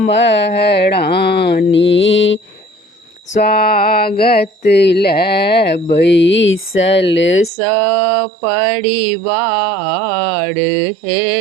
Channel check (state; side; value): drops out; left; at 7.5 s